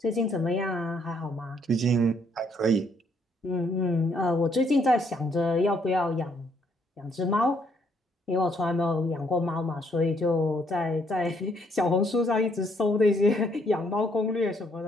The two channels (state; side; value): normal; both; correlation 0.69